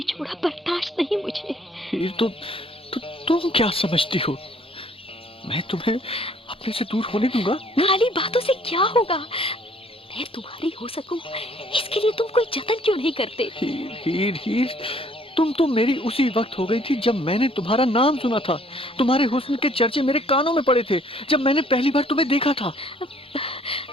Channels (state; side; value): normal; both; correlation 0.60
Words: बर्दाश्त नहीं मुझे। हीर, तो तुम क्या समझती हो? मैं तुम्हें अपने से दूर होने दूंगा? खाली बातों से क्या होगा? मैं तुम्हारी हो सकूं, इसके लिए तुम कोई जतन क्यों नहीं करते? हीर, तुम तो मेरी उसी वक्त हो गई थी जब मैंने तुम्हारा नाम सुना था। तुम्हारे हुस्न के चर्चे मेरे कानों में पड़े थे जब मैंने पहली बार तुम्हें देखा था।